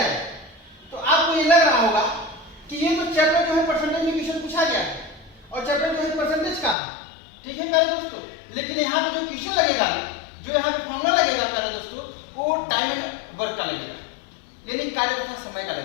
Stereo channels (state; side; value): drops out; right; at 6.8 s